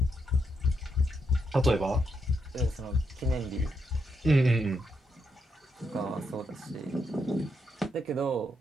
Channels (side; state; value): both; normal; correlation 0.80